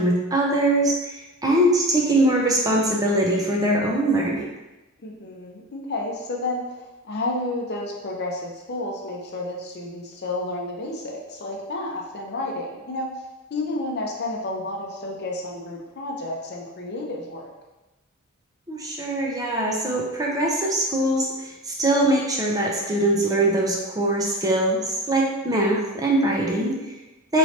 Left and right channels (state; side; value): normal; both; correlation 0.28